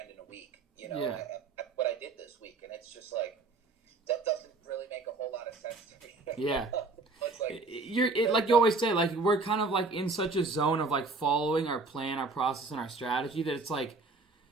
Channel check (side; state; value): left; quieter; 3.6 dB